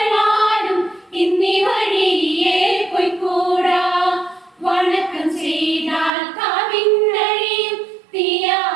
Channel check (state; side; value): drops out; left; at 6.1 s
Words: ഇന്നീ വഴിയെ പൊയ്ക്കൂടാ. വണക്കം ചെയ്താൽ കാവിന്നഴിയും